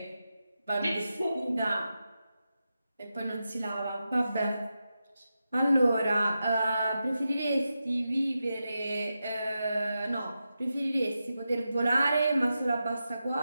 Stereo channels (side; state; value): both; inverted; correlation -0.90